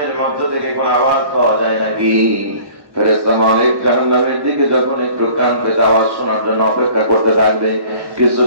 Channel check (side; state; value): left; late; 1.1 ms